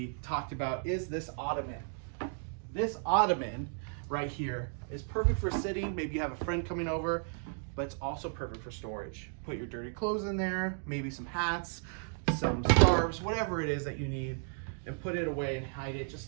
talked about is this ottoman. This ottoman right here is perfect for sitting. Maybe you have a friend coming over, but it's also perfect for storage. Put your dirty clothes in there, maybe some hats, some scarves, whatever it is that you need, and put it away and hide it.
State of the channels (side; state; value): left; silent; 55 dB below the other